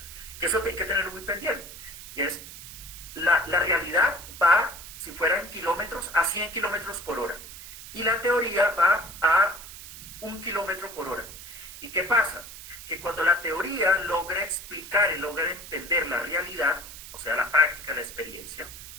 que eso hay que tener muy pendiente, y es, la realidad va, si fuera en kilómetros, a 100 kilómetros por hora, y la teoría va a 1 kilómetro por hora. ¿Y qué pasa? Que cuando la teoría logra explicar y logra entender la realidad, o sea, la práctica, la experiencia,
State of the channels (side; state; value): right; noise; hiss, 13 dB below the sound